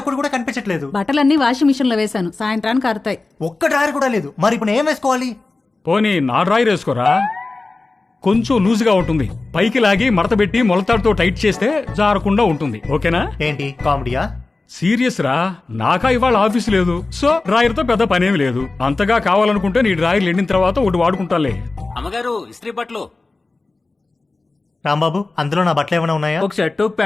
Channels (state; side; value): quieter; right; 3.4 dB